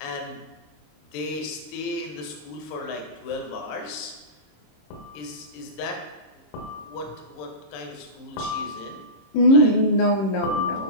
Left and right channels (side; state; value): right; late; 27 ms